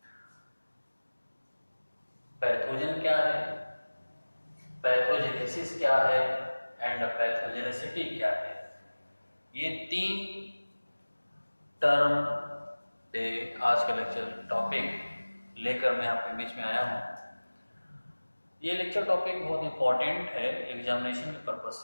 Pathogen क्या है, पैथोजेनेसिस क्या है एंड पैथोजेनेसिटी क्या है, ये तीन टर्म पे आज का लेक्चर टॉपिक लेकर मैं आपके बीच में आया हूँ। ये लेक्चर टॉपिक बहुत इंपॉर्टेंट है एग्जामिनेशन के पर्पज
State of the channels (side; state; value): both; inverted; correlation -1.00